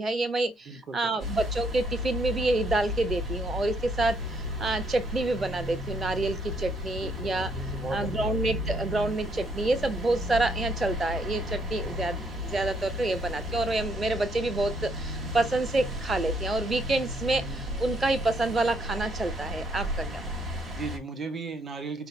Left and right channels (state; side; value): normal; both; correlation 0.70